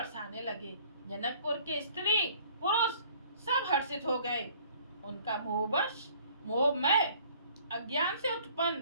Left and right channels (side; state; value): both; inverted; correlation -0.54